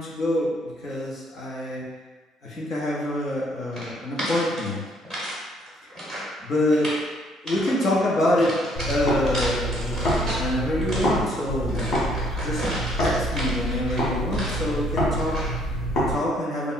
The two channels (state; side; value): normal; both; correlation 0.65